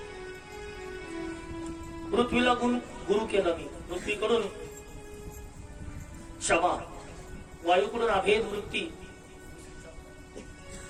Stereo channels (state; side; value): identical; both; correlation 1.00